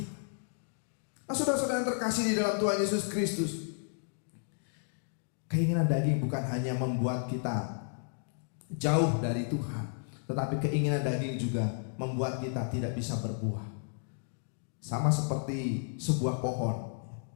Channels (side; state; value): right; silent; digital silence